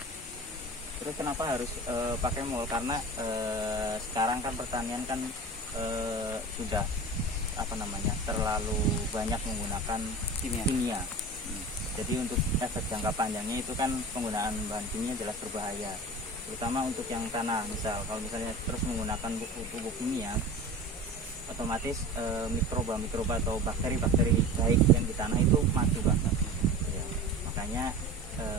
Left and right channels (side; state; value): both; normal; correlation 0.34